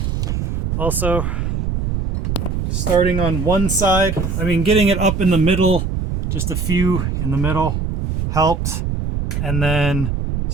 Also, starting on one side, getting it up in the middle, just a few in the middle helped, and then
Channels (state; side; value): noise; right; rumble, 2 dB below the sound